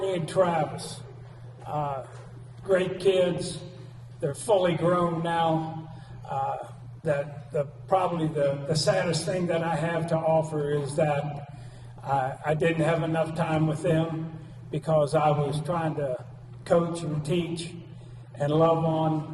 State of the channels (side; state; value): both; identical; correlation 1.00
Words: and Travis, great kids. They're fully grown now. Probably the saddest thing that I have to offer is that I didn't have enough time with them because I was trying to coach and teach and love